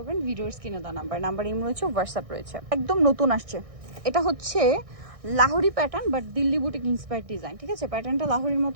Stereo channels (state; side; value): late; left; 1.6 ms